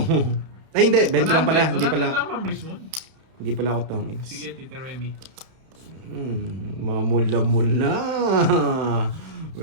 Ay, hindi. 20 lang pala. Hindi 100 pala. lang, Ma'am Rizwan. Hindi pala ako tongits. Sige, Tita Remy. Mamula-mula.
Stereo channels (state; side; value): late; left; 31 ms